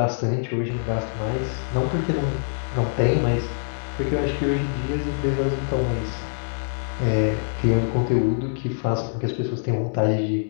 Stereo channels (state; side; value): silent; right; 62 dB below the other